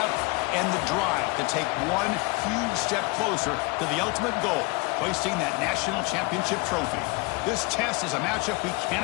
and the drive to take one huge step closer to the ultimate goal, hoisting that national championship trophy. This test is a matchup we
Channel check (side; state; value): right; quieter; 26.7 dB